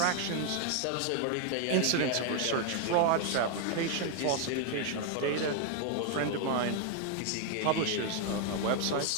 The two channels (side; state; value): both; different; correlation 0.00